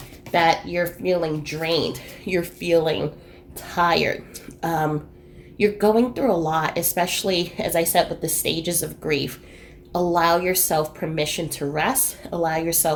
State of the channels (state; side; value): identical; both; correlation 1.00